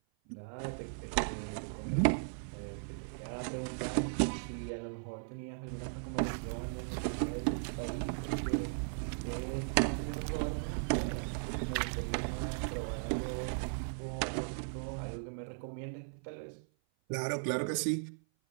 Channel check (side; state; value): left; silent; 53 dB below the other